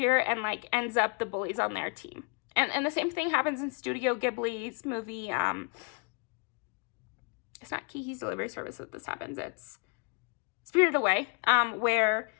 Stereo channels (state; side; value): quieter; right; 33.2 dB